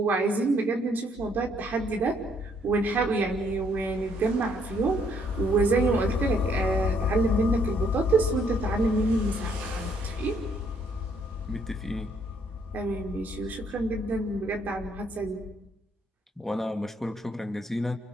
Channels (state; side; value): normal; both; correlation 0.68